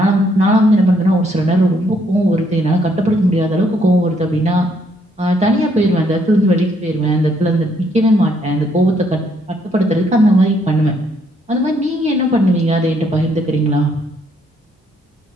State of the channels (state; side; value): normal; both; correlation 0.70